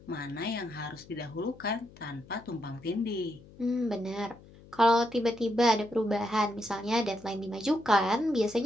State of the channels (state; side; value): noise; left; hum, 22 dB below the sound